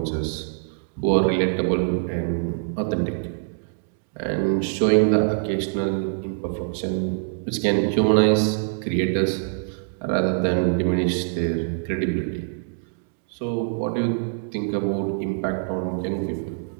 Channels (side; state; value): left; silent; digital silence